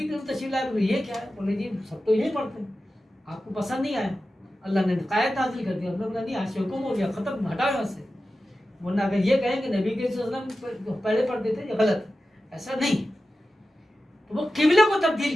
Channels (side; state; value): both; normal; correlation 0.93